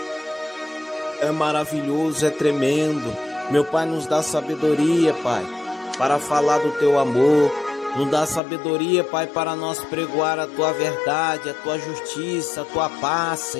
é maravilhoso, é tremendo. Meu Pai, nos dá sabedoria, Pai, para falar do Teu amor. Nos dá sabedoria, Pai, para nós pregoar a Tua verdade, a Tua justiça, a Tua paz,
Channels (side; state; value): right; drops out; at 8.4 s